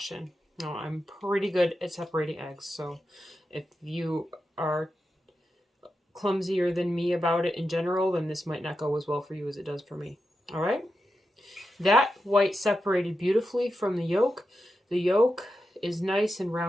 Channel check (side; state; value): both; normal; correlation 0.89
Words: Now, I'm pretty good at separating eggs, so if you are clumsier than me about it in general, then this might not go as well for you as it does for me. All right? That white separated beautifully from the yolk. The yolk is nice and